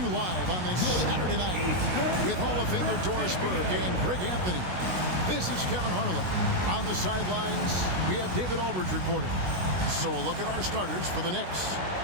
live on this Saturday night with Hall of Famer Doris Burke and Greg Anthony. This is Kevin Harlan. On the sidelines, we have David Aldridge reporting. So a look at our starters for the Knicks.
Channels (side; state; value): left; late; 16 ms